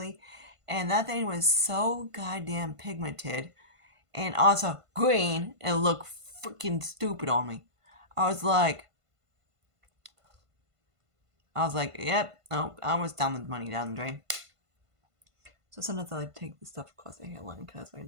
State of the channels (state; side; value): late; left; 1.5 ms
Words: And that thing was so goddamn pigmented and also green and looked freaking stupid on me. I was like, yep, no, I was down the money down the drain. So sometimes I like to take the stuff across the hairline because why